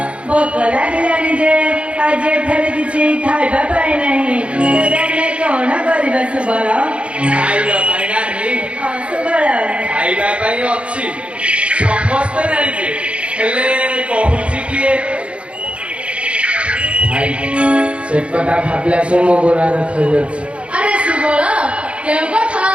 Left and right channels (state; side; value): late; left; 0.060 ms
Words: ଭୋକ ଲାଗିଲାଣି ଯେ ଆଜି ଏଠାରେ କିଛି ଖାଇବା ପାଇଁ ନାହିଁ। ତେବେ ଆମେ କଣ କରିବା ସୁବଳ? ଖାଇବା ପାଇଁ ନାହିଁ। ହଁ ସୁବଳ, ଖାଇବା ପାଇଁ ଅଛି, ସମସ୍ତେ ଜାଣିଛେ, ହେଲେ କହୁଛି କିଏ? ଭାଇ ସେ କଥା ଭାବିଲା ସେ ମୋ ଗୋଡ଼ ଦେଖାଯାଉଛି। ଆରେ ସୁବଳ, କେଉଁ କଥା